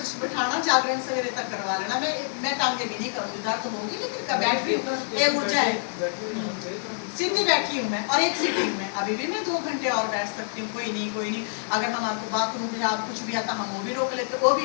बिठाना, जागरण सवेरे तक करवा लेना, मैं टांगे भी नहीं करूँगी, दर्द तो होगी लेकिन बैठ भी ये ऊर्जा है, सीधी बैठी हूँ मैं, और एक सीटिंग में अभी भी मैं 2 घंटे और बैठ सकती हूँ, कोई नहीं। अगर हमारे को बाथरूम में आप कुछ भी आता हम वो भी रोक लेते, वो भी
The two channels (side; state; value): right; silent; digital silence